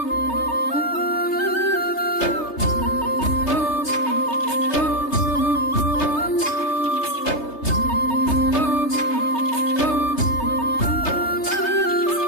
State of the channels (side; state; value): right; late; 3.3 ms